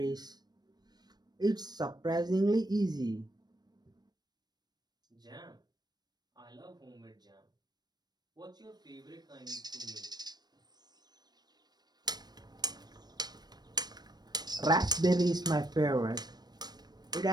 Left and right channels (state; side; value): late; left; 0.19 ms